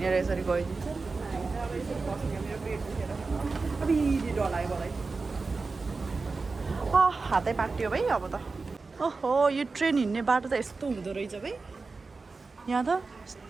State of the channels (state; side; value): quieter; left; 4.1 dB